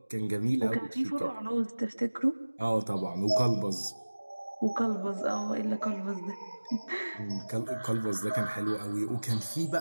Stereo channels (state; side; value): inverted; both; correlation -1.00